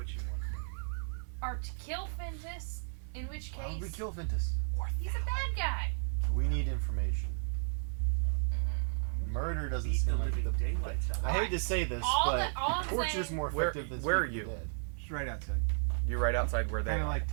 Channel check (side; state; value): left; silent; digital silence